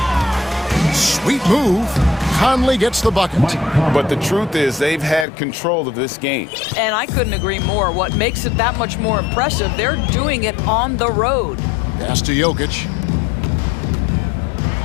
Sweet move. Conley gets the bucket. But the truth is they've had control of this game. And I couldn't agree more. What makes it that much more impressive, they're doing it on the road. Pass to Jokic.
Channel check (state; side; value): drops out; right; at 5.2 s